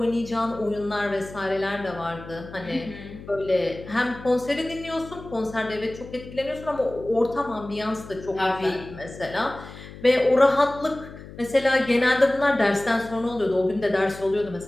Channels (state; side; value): noise; left; hum, 15 dB below the sound